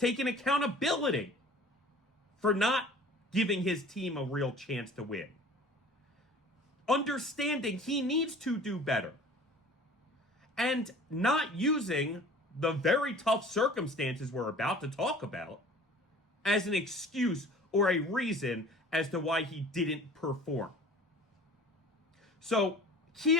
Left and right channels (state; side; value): normal; both; correlation 0.46